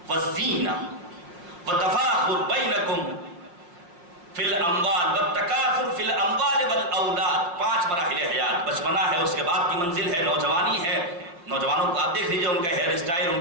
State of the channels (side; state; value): left; late; 5.8 ms